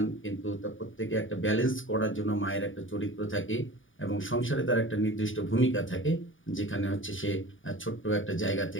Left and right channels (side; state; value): right; late; 0.57 ms